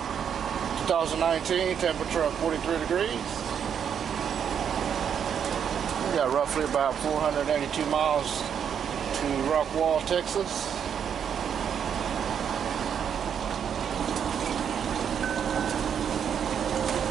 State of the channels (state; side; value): quieter; left; 8.1 dB